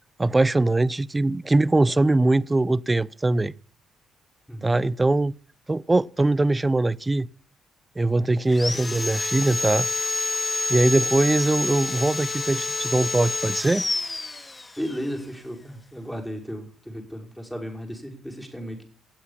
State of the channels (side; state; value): both; normal; correlation 0.98